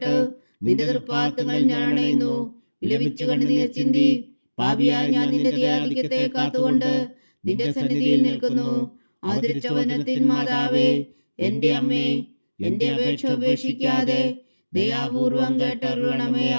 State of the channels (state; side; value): inverted; both; correlation -1.00